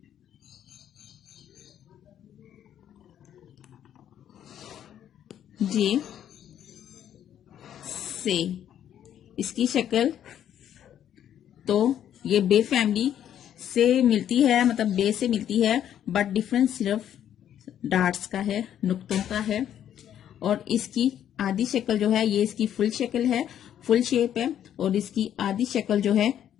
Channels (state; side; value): quieter; right; 10.3 dB